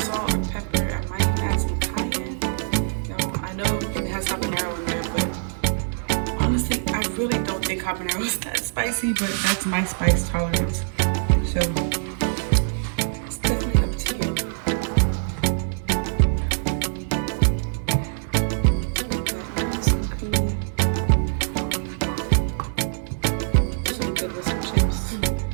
or pepper. I might add some cayenne. You know, I know it has habanero in there, but honestly, I really don't think habanero is that spicy, but that's my spice tolerance. So it's definitely up to you. Nice and creamy. This will be good with some chips.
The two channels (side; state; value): left; silent; digital silence